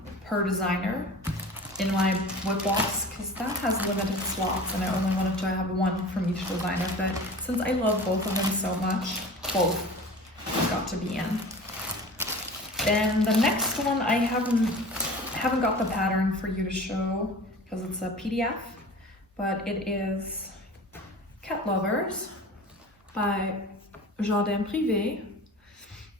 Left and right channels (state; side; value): normal; both; correlation 0.38